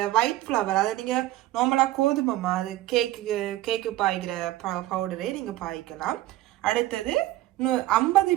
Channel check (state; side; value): quieter; left; 15.8 dB